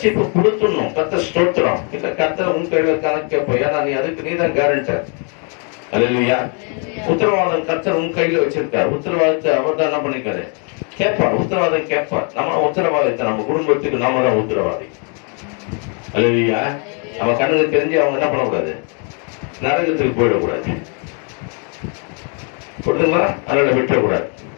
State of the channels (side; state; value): right; quieter; 39.2 dB